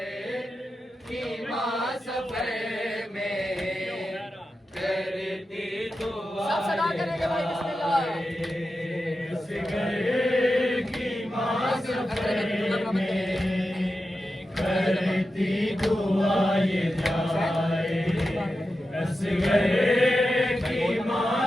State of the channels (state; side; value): normal; both; correlation 0.91